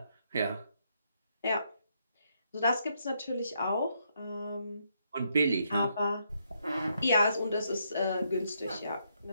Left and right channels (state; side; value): inverted; both; correlation -0.76